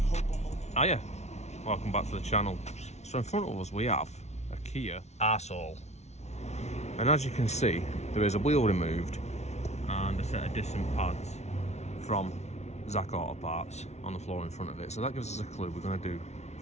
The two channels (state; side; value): late; right; 0.32 ms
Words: hope, I'm on it. Hiya, welcome back to the channel. So in front of us we have a Kia arsehole, and as you can see there is a wheel removed and a set of distant pads from Zak Autoparts on the floor in front of it. So that gives us a clue we're going to do